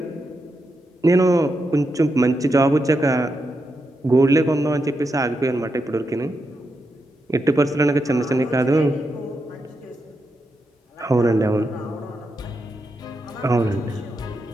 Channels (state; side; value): normal; both; correlation 0.85